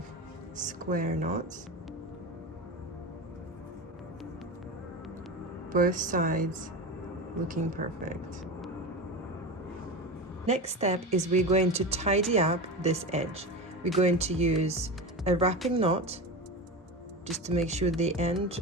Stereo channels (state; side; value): normal; both; correlation 0.23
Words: square knots. Both sides looking perfect. Next step is we're going to tidy up this edge. We're going to use a wrapping knot just to make sure the end